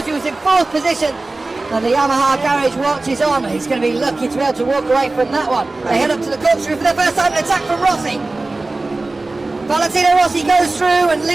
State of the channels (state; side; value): quieter; left; 3.2 dB